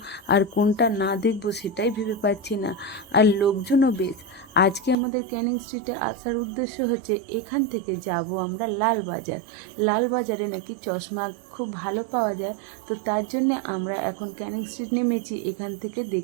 আর কোনটা না দেখব সেটাই ভেবে পাচ্ছি না। আর লোকজনও বেশ। আজকে আমাদের ক্যানিং স্ট্রিটে আসার উদ্দেশ্য হচ্ছে এখান থেকে যাব আমরা লালবাজার। লালবাজারে নাকি চশমা খুব ভালো পাওয়া যায়, তো তার জন্যে আমরা এখন ক্যানিং স্ট্রিট নেমেছি। এখান থেকে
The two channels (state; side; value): drops out; left; at 5.0 s